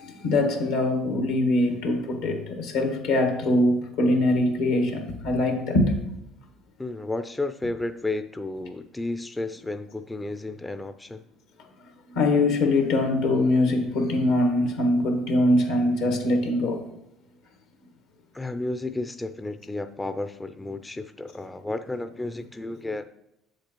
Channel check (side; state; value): both; normal; correlation 0.67